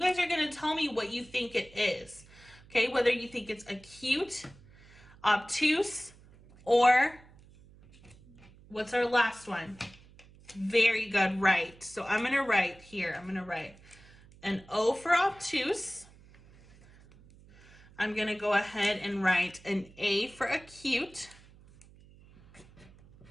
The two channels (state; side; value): noise; right; hum, 24 dB below the sound